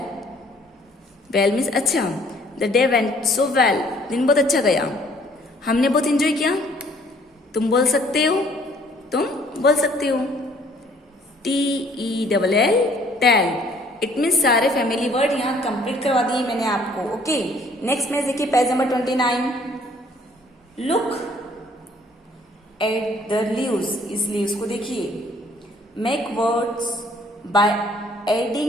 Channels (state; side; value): normal; both; correlation 0.59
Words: वेल मीन्स अच्छा। The day went so well, दिन बहुत अच्छा गया, हमने बहुत इंजॉय किया। तुम बोल सकते हो, तुम बोल सकते हो। TELL टेल, इट मीन्स सारे फैमिली वर्ड यहाँ कंप्लीट करवा दिए मैंने आपको। ओके, नेक्स्ट में देखिए page number 29। Look at the leaves, इस लीव्स को देखिए। Make words by